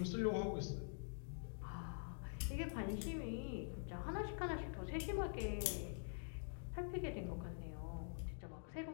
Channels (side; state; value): right; silent; digital silence